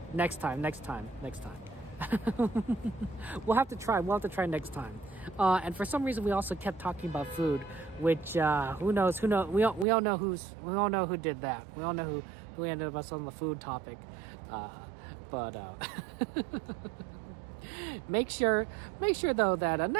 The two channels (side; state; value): left; drops out; at 9.9 s